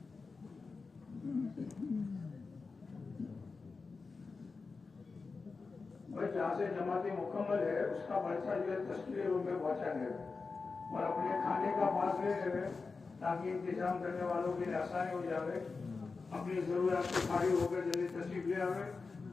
جہاں سے جماعت مکمل ہے اس کا پرچہ جو ہے تشکیل روم میں پہنچا گیا اور اپنے کھانے کا پاس لے رہے تاکہ انتظام کرنے والوں کے لیے آسانی ہو جائے، اپنی ضروریات سے فارغ ہو کر جلدی تشریف لے آئے۔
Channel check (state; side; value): quieter; right; 4.4 dB